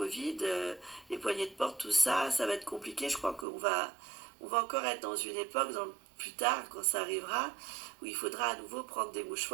les poignées de porte, tout ça, ça va être compliqué. Je crois qu'on va encore être dans une époque, plus tard, quand ça arrivera, où il faudra à nouveau prendre des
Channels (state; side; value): drops out; left; at 3.5 s